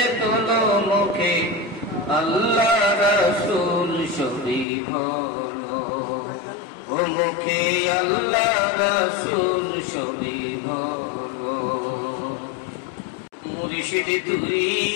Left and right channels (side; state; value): right; drops out; at 4.7 s